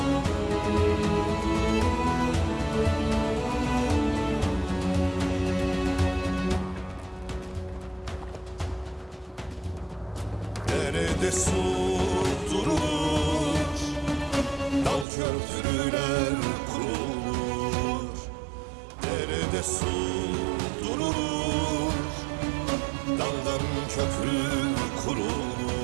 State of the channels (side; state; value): left; drops out; at 15.1 s